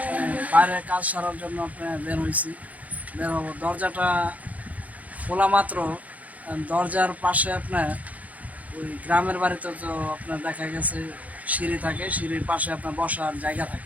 বাইরে কাজ সারার জন্য আপনার বের হবো। দরজাটা খোলা মাত্র দরজার পাশে আপনার ওই গ্রামের বাড়িতে তো আপনার দেখা গেছে সিঁড়ি থাকে, সিঁড়ির পাশে আপনার বসার জায়গা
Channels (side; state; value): left; late; 0.073 ms